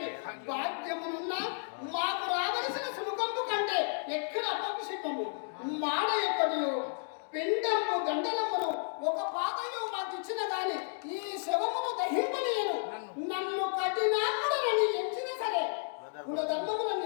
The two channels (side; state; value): right; silent; digital silence